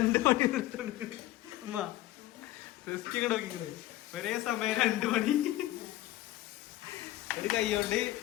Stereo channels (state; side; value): quieter; right; 15.5 dB